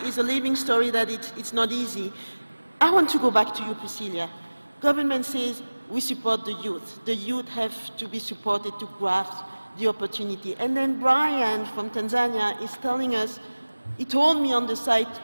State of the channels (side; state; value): both; inverted; correlation -1.00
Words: a living story that it's not easy. I want to go back to you, Priscilla. Government says we support the youth. The youth have to be supported to grasp the opportunity. And then Brian from Tanzania is telling us, he told me on the site,